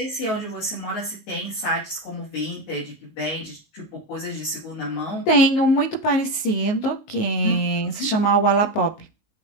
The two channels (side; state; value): right; late; 19 ms